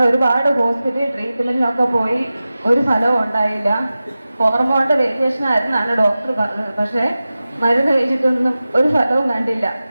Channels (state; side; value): inverted; both; correlation -0.95